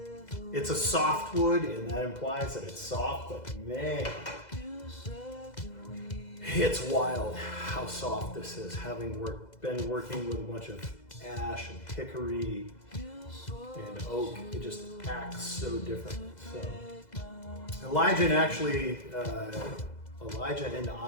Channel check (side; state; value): right; late; 2.0 ms